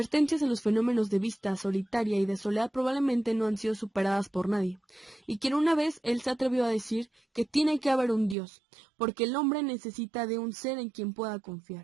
en los fenómenos de vista solitaria y de soledad probablemente no han sido superadas por nadie, y quien una vez él se atrevió a decir que tiene que haber un Dios, porque el hombre necesita de un ser en quien pueda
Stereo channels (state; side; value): drops out; left; at 8.3 s